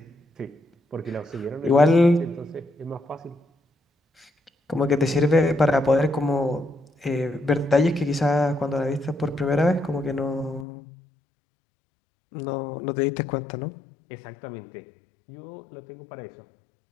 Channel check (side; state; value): right; drops out; at 10.7 s